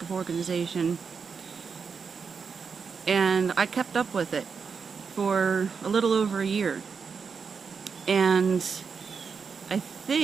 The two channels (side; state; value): left; quieter; 5.7 dB